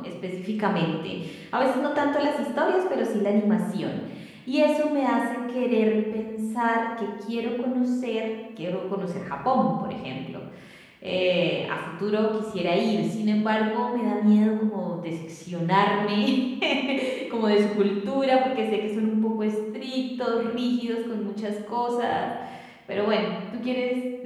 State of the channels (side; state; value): both; identical; correlation 1.00